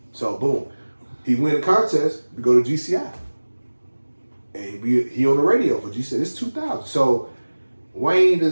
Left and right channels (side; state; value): both; inverted; correlation -1.00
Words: So, boom. He win the contest. We go to GCI. And he on the radio for GCI. It's 2000. So, Wayne